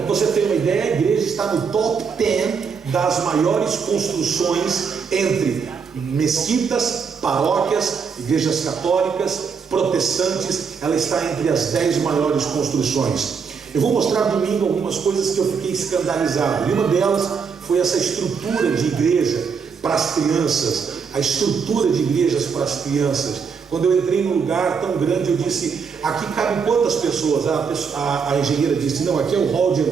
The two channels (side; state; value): left; quieter; 6.0 dB